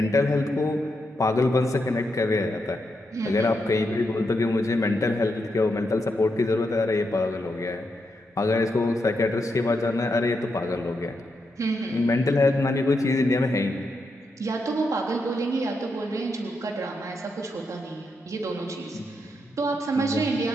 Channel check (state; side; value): normal; both; correlation 0.83